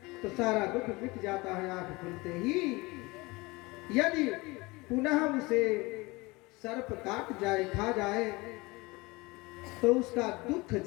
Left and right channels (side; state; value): right; quieter; 23.6 dB